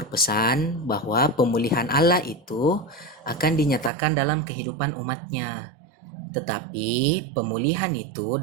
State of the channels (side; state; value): left; drops out; at 3.9 s